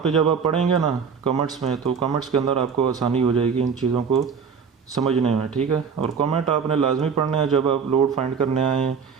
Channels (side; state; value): left; quieter; 6.2 dB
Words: जब आप पढ़ेंगे ना कमेंट्स में, तो कमेंट्स के अंदर आपको आसानी हो जाएगी इन चीज़ों को समझने में, ठीक है। और कमेंट आपने लाजमी पढ़ना है, जब आप लोड फाइंड करने आए